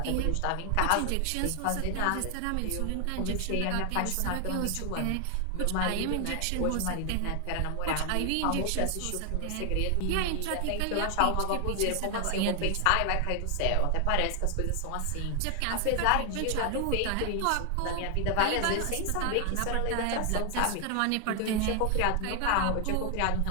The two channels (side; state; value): both; different; correlation 0.00